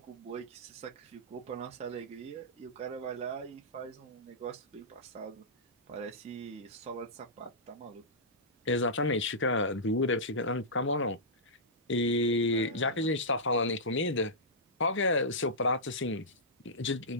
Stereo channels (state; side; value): normal; both; correlation -0.15